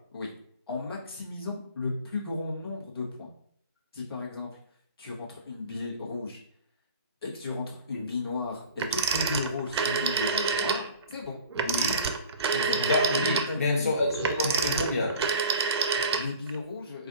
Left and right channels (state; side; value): inverted; both; correlation -0.42